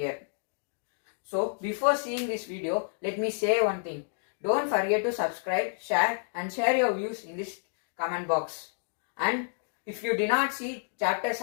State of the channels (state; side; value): silent; right; digital silence